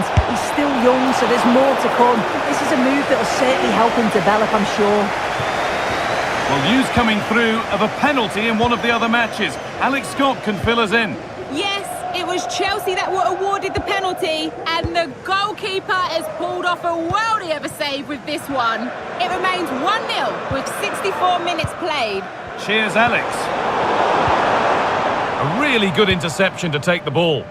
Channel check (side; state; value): both; identical; correlation 1.00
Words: He's still young, so there's more to come. This is a move that will certainly help him develop, I'm sure. Well, news coming through of a penalty in one of the other matches. Alex Scott can fill us in. Yes, it was Chelsea that were awarded the penalty, and the goalkeeper has pulled off a worldie of a save with this one. It remains 1-0 with 64 minutes played. Cheers, Alex. A really good interception to take the ball.